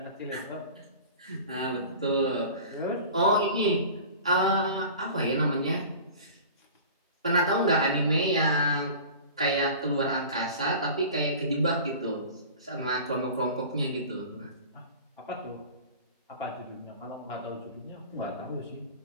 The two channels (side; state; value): both; inverted; correlation -0.39